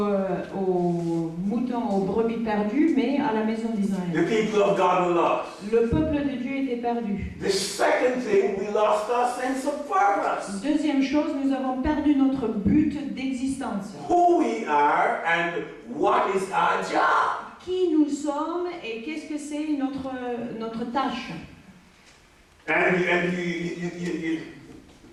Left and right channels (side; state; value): both; identical; correlation 1.00